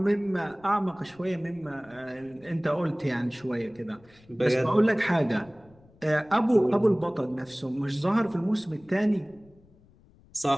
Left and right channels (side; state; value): left; noise; rumble, 28 dB below the sound